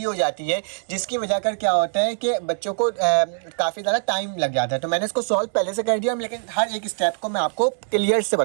हो जाती है, जिसकी वजह कर क्या होता है कि बच्चों को काफ़ी ज़्यादा टाइम लग जाता है। तो मैंने इसको सॉल्व पहले से कर दिया, लेकिन हर एक स्टेप को मैं आपको क्लियर से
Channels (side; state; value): left; silent; 58 dB below the other